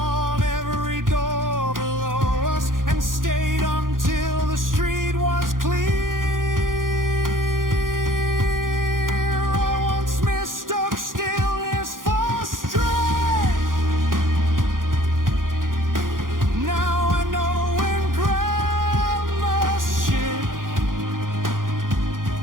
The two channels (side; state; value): left; late; 0.90 ms